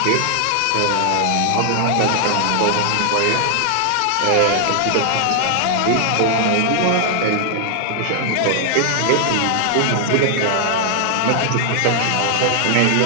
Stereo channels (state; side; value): different; both; correlation 0.00